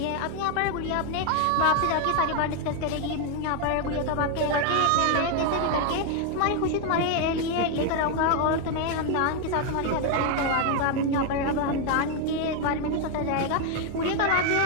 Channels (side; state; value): both; different; correlation 0.01